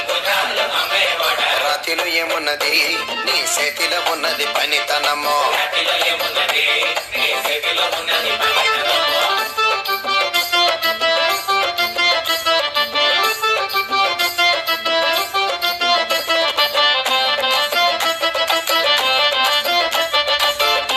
రాతిలో ఏమున్నది నీ చేతిలో ఉన్నది పనితనమో.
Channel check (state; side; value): identical; both; correlation 1.00